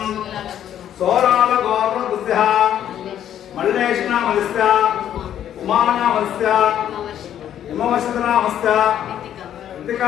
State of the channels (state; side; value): quieter; right; 10.5 dB